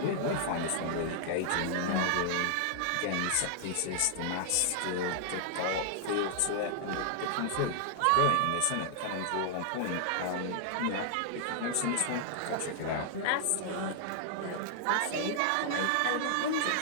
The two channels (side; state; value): both; different; correlation -0.01